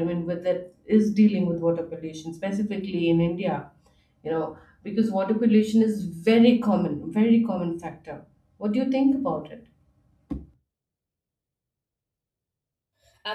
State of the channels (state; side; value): identical; both; correlation 1.00